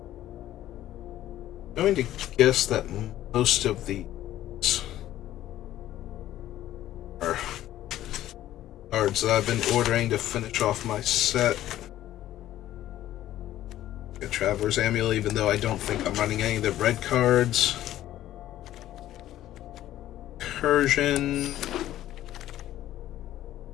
I'm going to guess that most of these are cards that I've been ordering to finish off my set. A Traveler's Amulet, even though I don't think I'm running any of the red cards. Incursion.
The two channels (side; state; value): right; quieter; 13.4 dB